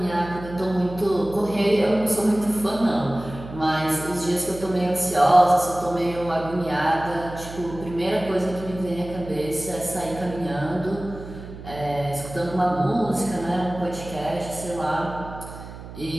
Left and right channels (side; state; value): right; noise; hum, 13 dB below the sound